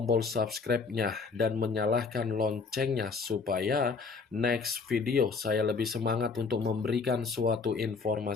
subscribe-nya dan menyalakan loncengnya supaya next video saya lebih semangat untuk memberikan suatu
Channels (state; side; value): quieter; right; 4.8 dB